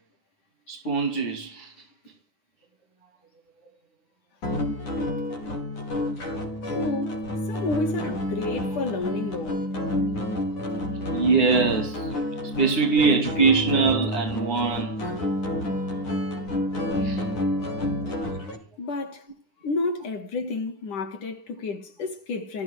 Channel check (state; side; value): late; right; 9.4 ms